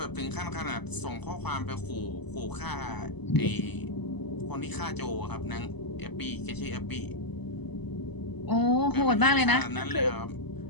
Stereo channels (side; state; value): right; late; 0.99 ms